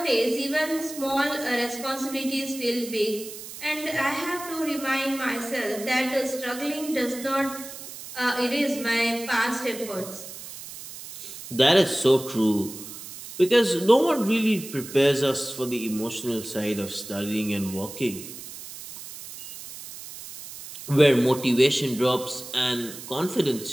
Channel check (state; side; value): noise; right; hiss, 12 dB below the sound